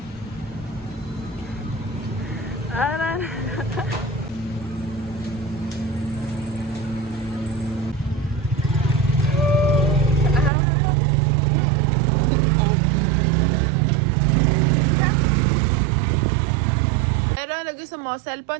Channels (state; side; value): drops out; left; at 10.5 s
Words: Pero lagi sa mo,